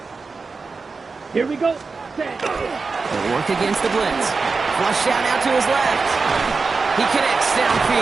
Here we go. Set. They'll work against the blitz. Flush out now to his left. He connects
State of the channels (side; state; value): left; quieter; 4.4 dB